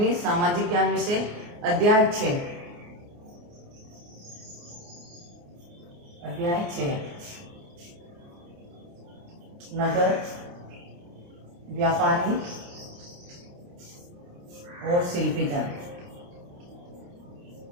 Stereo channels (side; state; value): left; late; 29 ms